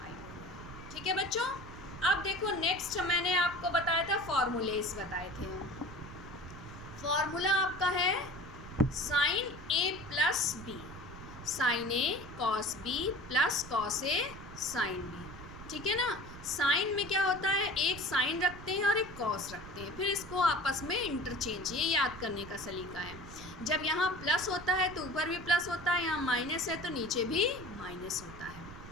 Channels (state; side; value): noise; right; rumble, 14 dB below the sound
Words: ठीक है बच्चों, अब देखो नेक्स्ट मैंने आपको बताया था फॉर्मूलेस बताए थे। फॉर्मूला आपका है sign a plus B, sign A cos B plus cos A sine B. ठीक है ना, साइन में क्या होता है, एक साइन रखते हैं और एक कॉस रखते हैं, फिर इसको आपस में इंटरचेंज, ये याद करने का सलीका है। जब यहाँ प्लस होता है तो ऊपर भी प्लस होता है, यहाँ माइनस है तो नीचे भी माइनस होता है।